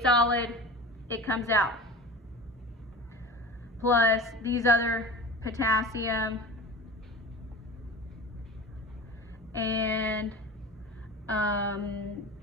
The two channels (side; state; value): both; normal; correlation 0.34